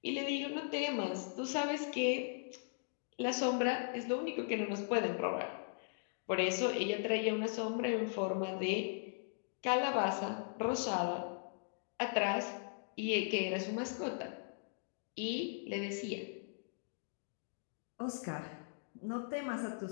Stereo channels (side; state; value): right; silent; digital silence